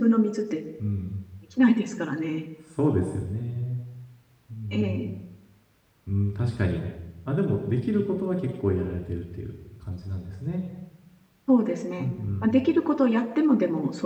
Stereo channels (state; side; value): identical; both; correlation 1.00